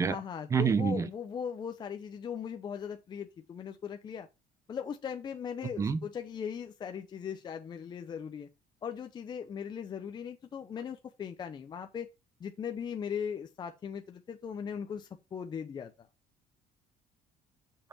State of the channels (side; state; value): both; normal; correlation 0.63